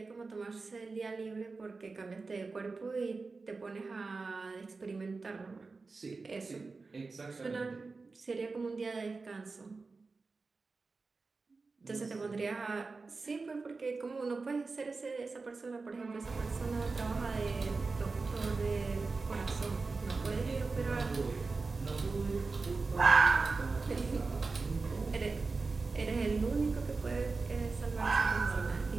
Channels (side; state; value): left; quieter; 4.0 dB